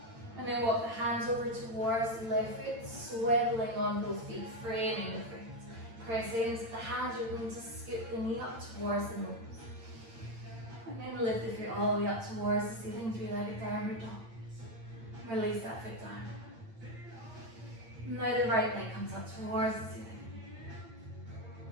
And then walk the hands over towards the left foot, swiveling on both feet, framing the foot. Press into the hands, you're going to scoop the knee up towards the nose. And then lift the foot all the way up towards the ceiling, three-legged downward dog. Release that foot down. Now the right leg comes up towards the ceiling.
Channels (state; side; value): late; left; 8.8 ms